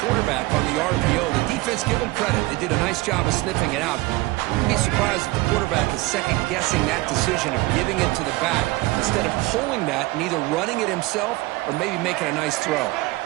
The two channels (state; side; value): quieter; left; 20.8 dB